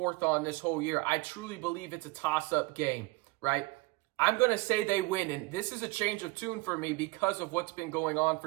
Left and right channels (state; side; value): quieter; left; 23.7 dB